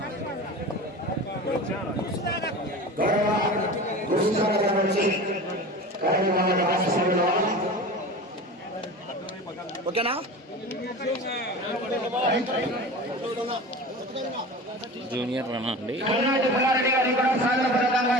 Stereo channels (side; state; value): both; normal; correlation 0.34